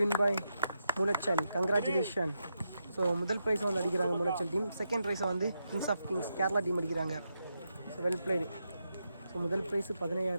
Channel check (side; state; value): both; inverted; correlation -0.84